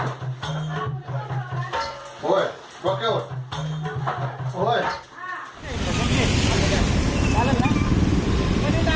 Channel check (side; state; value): both; identical; correlation 1.00